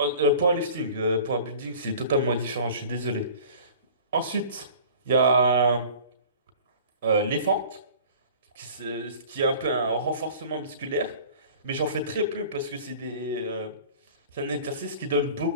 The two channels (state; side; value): inverted; both; correlation -0.43